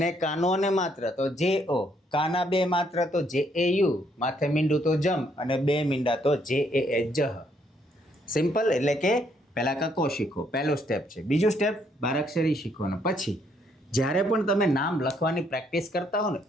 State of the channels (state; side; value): normal; both; correlation 0.70